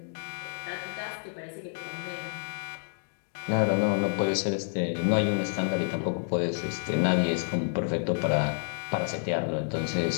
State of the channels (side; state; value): right; silent; digital silence